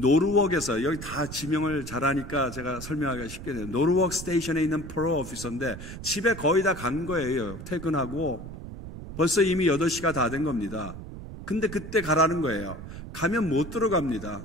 여기 다 지명을 잘하니까 제가 설명하기가 쉽게 돼요. 노르웍 스테이션에 있는 프로 오피서인데 집에 거의 다 간 거예요. 퇴근하고 벌써 이미 8시가 다 된 겁니다. 근데 그때 가라는 거예요. 가면 못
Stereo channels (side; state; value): right; noise; rumble, 11 dB below the sound